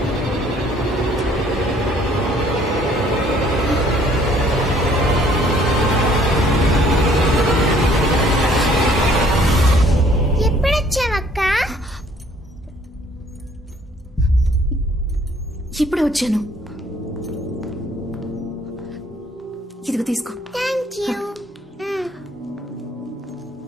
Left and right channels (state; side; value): normal; both; correlation 0.60